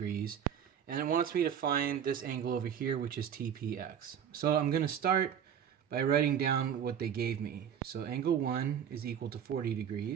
And it wants me to find this angle over here, which is TPX. So I'm going to start by writing down what they gave me. So angle 1 is equal to 40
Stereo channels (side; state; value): left; quieter; 8.6 dB